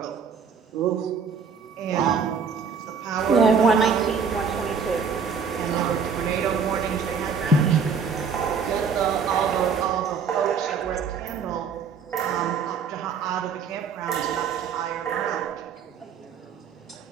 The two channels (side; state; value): left; quieter; 6.0 dB